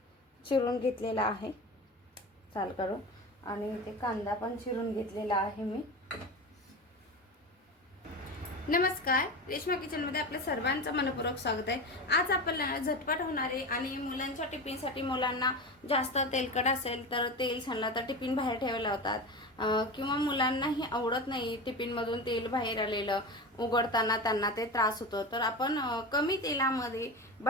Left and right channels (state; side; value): normal; both; correlation 0.26